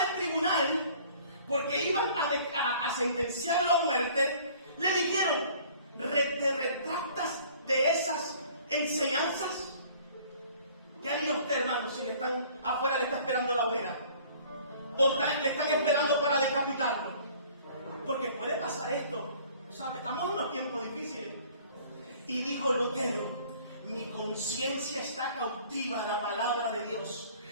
tribunal, porque iban a sentenciarlo a muerte, le dijeron, ¿te retractas de esas enseñanzas? ¿Qué haría usted, hermano, si afuera le está esperando la hoguera? ¿O le están esperando para decapitarlo? Porque puede pasar esto, ¿sabe? Estamos en unos tiempos difíciles. Y dijo Lutero, mi conciencia está cautiva a la palabra de Dios.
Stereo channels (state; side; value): inverted; both; correlation -0.53